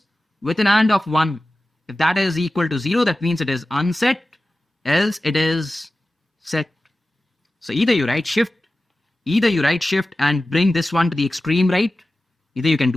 with an AND of 1, if that is equal to 0, that means it is unset, else it is set. So either you write shift Either you right shift and bring this one to the extreme right. Either you can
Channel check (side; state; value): both; normal; correlation 0.95